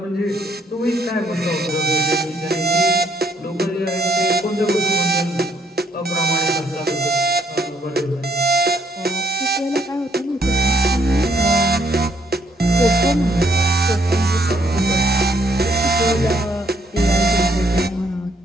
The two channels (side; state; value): both; normal; correlation 0.69